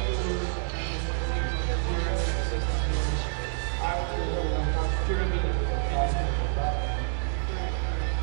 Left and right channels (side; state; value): left; silent; 59 dB below the other